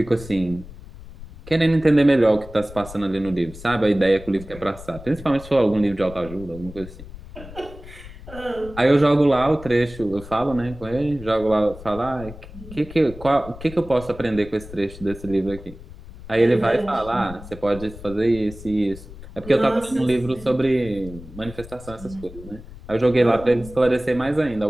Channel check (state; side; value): noise; left; rumble, 16 dB below the sound